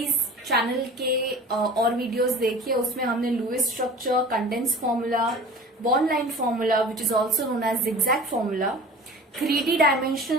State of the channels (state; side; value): normal; both; correlation 0.41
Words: चैनल के और वीडियोस देखिए। उसमें हमने Lewis structure, condense formula, bond line formula which is also known as zigzag formula, 3D